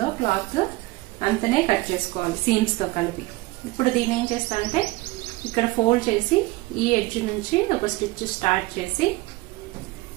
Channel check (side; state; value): left; quieter; 21.3 dB